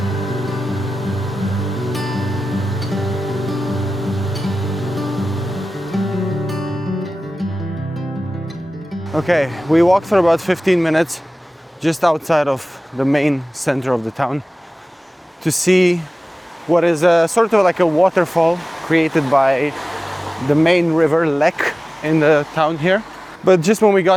Okay, we walked for about 15 minutes just outside of the main center of the town to see what is sort of like a waterfall created by the main river Lech in the town here. But just when we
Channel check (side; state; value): both; normal; correlation 0.96